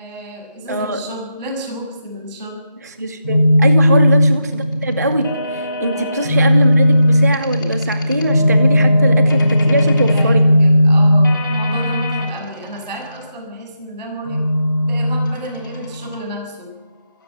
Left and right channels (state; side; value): inverted; both; correlation -0.85